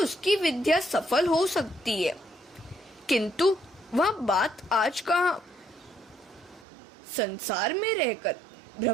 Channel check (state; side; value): drops out; left; at 6.7 s